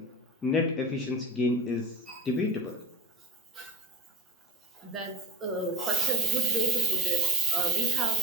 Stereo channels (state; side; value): normal; both; correlation 0.32